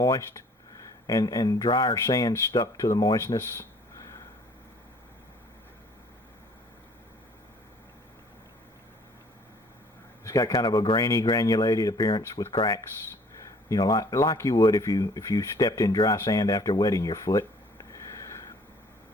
and drier sand stuck to the moistness. It's got kind of a grainy, granulated appearance with cracks, like you would if you stepped in dry sand after wetting your foot.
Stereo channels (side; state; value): both; normal; correlation 0.56